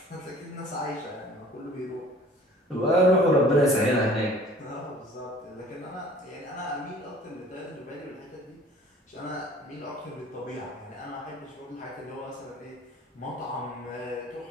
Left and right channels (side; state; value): both; normal; correlation 0.50